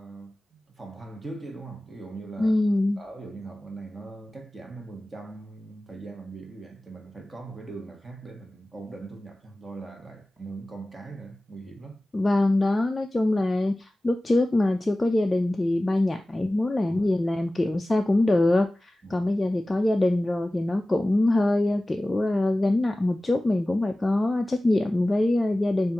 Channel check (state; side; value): normal; both; correlation 0.97